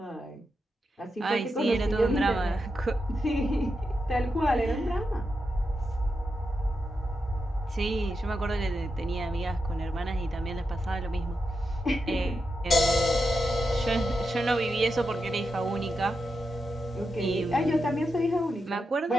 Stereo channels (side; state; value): both; normal; correlation 0.87